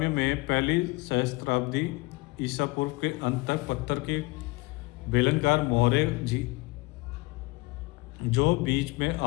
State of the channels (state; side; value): quieter; right; 23.6 dB